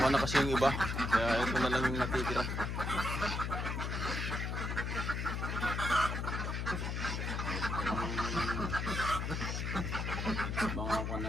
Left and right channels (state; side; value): noise; left; hum, 2 dB below the sound